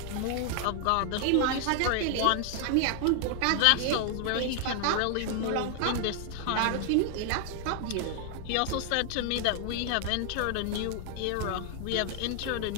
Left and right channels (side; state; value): both; different; correlation 0.00